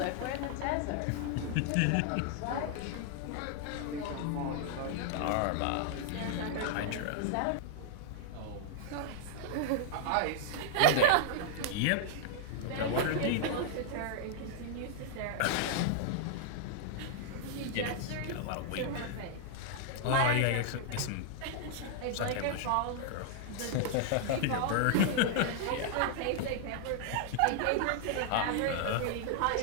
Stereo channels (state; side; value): different; both; correlation -0.01